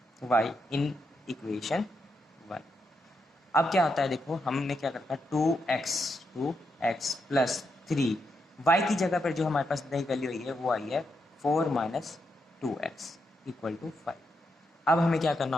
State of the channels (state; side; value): normal; both; correlation 0.82